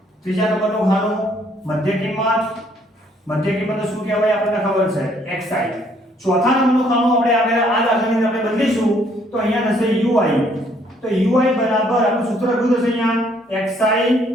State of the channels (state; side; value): normal; both; correlation 0.65